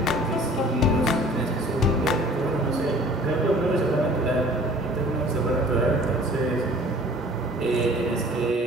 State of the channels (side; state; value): both; normal; correlation 0.49